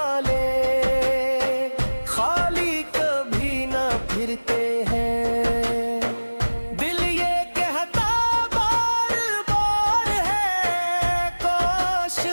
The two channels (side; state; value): both; inverted; correlation -1.00